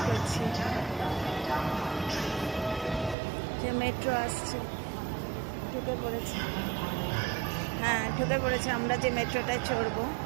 করছি যে মেট্রো আসছে। ঢুকে পড়েছে, হ্যাঁ ঢুকে পড়েছে। আমরা যে মেট্রোটায় চড়বো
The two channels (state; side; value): drops out; left; at 3.2 s